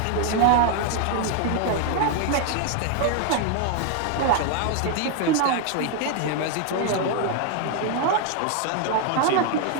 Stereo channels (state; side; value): different; both; correlation 0.00